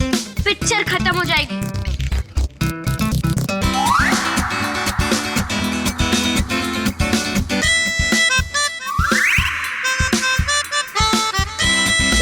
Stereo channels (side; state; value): both; identical; correlation 1.00